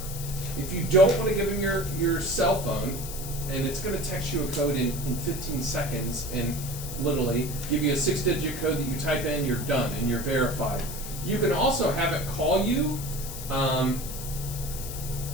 If you don't want to give them your cell phone, and it's going to text you a code in 15 seconds, and literally give you a 6-digit code that you type in, you're done, and you're verified. You can also have it call you,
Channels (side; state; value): left; noise; hiss, 9 dB below the sound